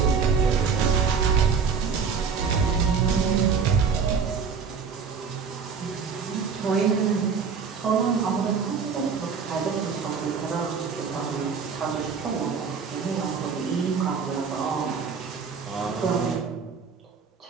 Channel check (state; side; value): quieter; left; 5.9 dB